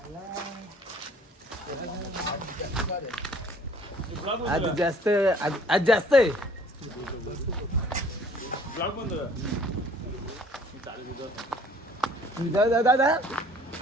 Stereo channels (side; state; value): both; normal; correlation 0.55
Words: आज जास्त आज जास्त आहे. दादा